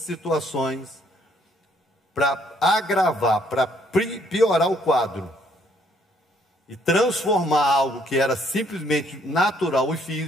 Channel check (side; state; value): both; normal; correlation 0.66